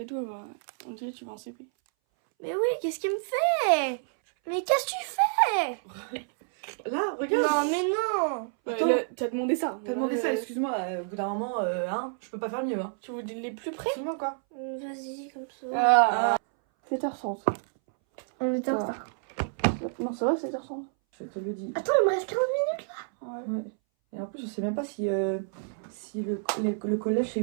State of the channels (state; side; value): silent; left; 59 dB below the other